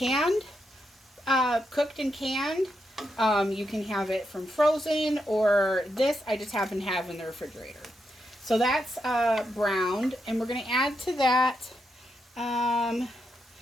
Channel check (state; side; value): normal; both; correlation 0.83